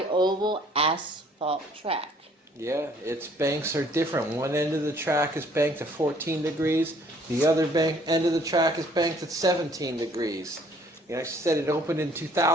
asphalt track. Yeah, its banks are different. One end of the track is banked at 14 degrees. The other end of the track is banked at 17 degrees. You know, I said it opened in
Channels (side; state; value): both; normal; correlation 0.60